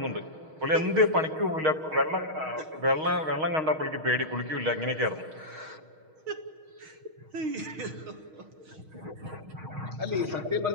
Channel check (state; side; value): late; left; 6.4 ms